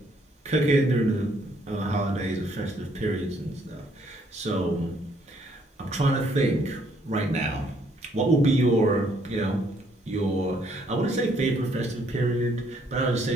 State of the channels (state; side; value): normal; both; correlation 0.67